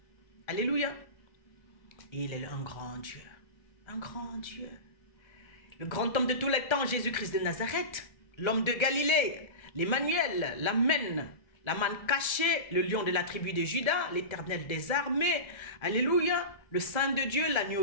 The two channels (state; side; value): late; right; 1.3 ms